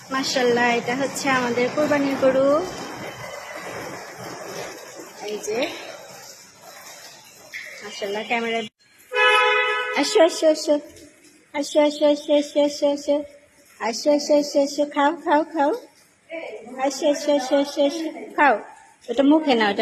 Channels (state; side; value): identical; both; correlation 1.00